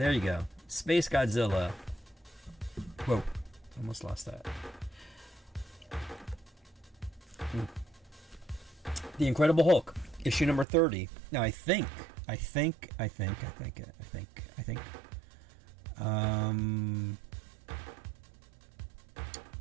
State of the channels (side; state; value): left; drops out; at 10.7 s